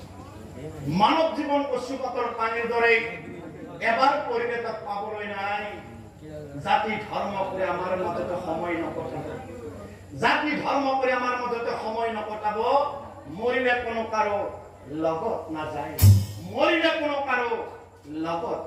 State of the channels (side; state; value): both; identical; correlation 1.00